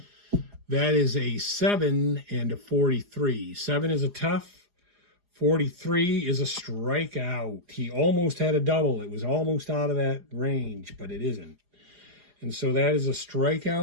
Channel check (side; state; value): left; late; 4.9 ms